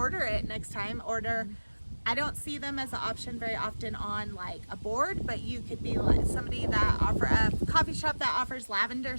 it next time. I don't see them as an option very often on like a board, but you could be like somebody that a coffee shop that offers lavender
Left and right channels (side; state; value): both; inverted; correlation -1.00